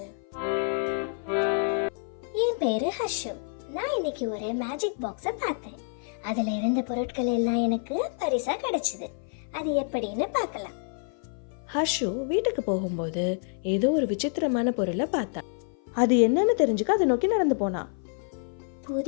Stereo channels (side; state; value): right; silent; 55 dB below the other